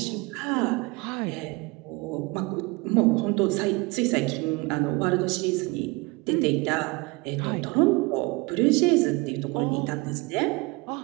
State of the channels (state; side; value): quieter; left; 26.0 dB